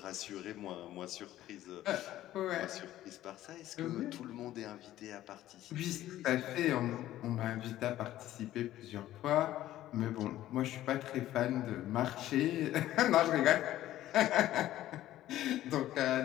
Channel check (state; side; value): quieter; right; 13.9 dB